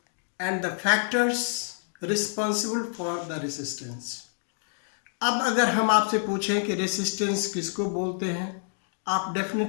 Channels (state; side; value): silent; right; digital silence